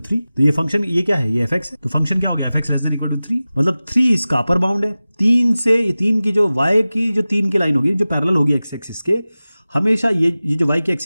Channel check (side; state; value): both; inverted; correlation -0.97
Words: तो ये फंक्शन, ये क्या है, ये fx है, तो फंक्शन क्या हो गया, fx less than equal to 3, मतलब 3 इसका अपर बाउंड है। 3 की जो y की जो 3 की लाइन होगी जो पैरेलल होगी x एक्सिस के, हमेशा ये जो y की